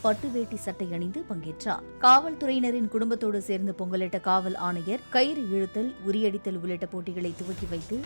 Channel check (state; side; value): inverted; both; correlation -1.00